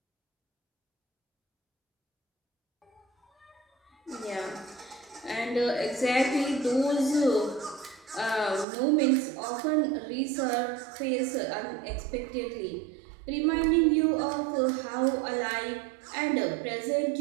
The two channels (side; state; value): left; drops out; at 8.7 s